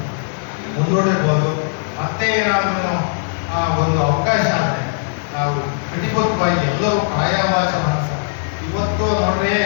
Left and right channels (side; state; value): right; silent; digital silence